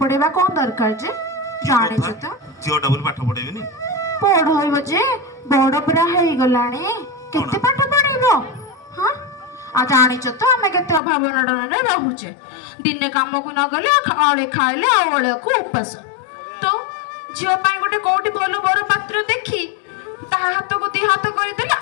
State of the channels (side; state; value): right; drops out; at 11.0 s